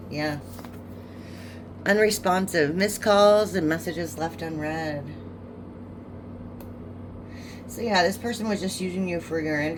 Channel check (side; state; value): both; identical; correlation 1.00